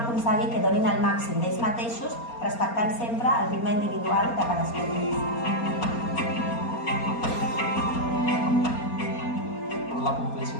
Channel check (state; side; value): late; right; 4.3 ms